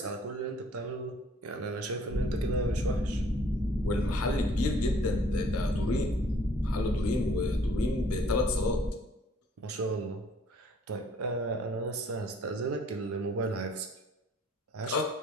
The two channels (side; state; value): both; normal; correlation 0.59